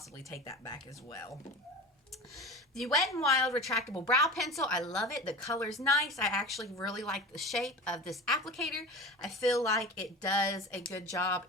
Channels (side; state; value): both; normal; correlation 0.33